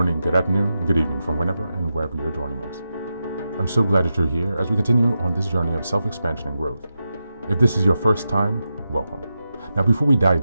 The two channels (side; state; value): both; inverted; correlation -0.89